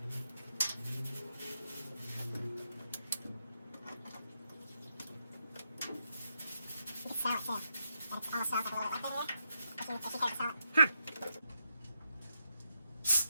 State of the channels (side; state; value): both; inverted; correlation -0.83